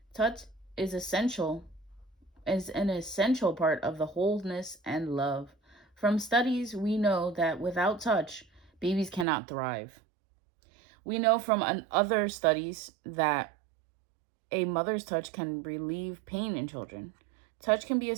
Touch is an essential part of the wholeness and love. From studies, we know that without touch, babies cannot thrive. We know from other studies that a mother's touch can relieve pain in children. Touch can be a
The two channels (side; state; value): left; drops out; at 9.2 s